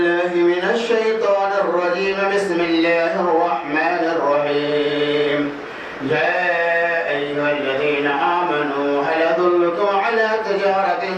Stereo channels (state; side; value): identical; both; correlation 1.00